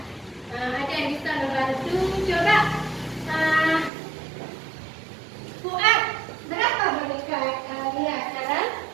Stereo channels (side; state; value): left; drops out; at 3.9 s